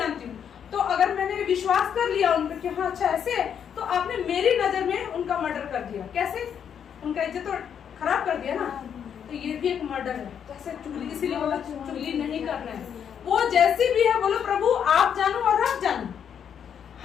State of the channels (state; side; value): quieter; right; 8.2 dB